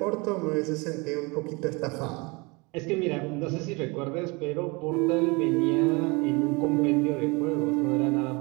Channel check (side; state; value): left; quieter; 27.3 dB